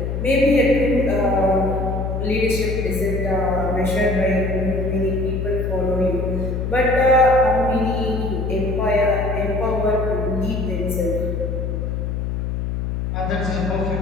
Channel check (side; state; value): left; noise; hum, 2 dB below the sound